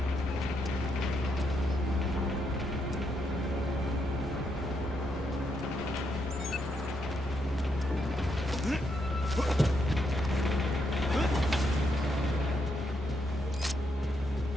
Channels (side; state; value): both; normal; correlation 0.79